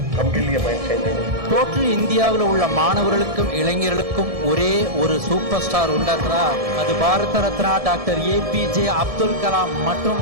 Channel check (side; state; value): left; late; 1.7 ms